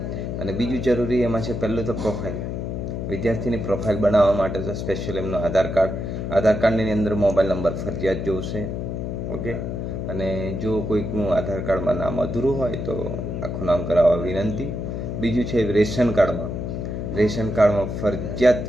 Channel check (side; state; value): left; noise; hum, 4 dB below the sound